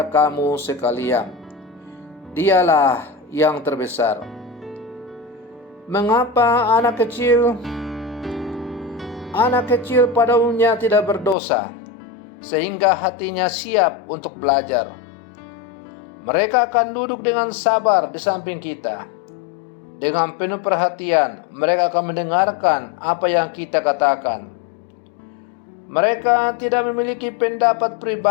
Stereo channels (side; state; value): right; drops out; at 11.4 s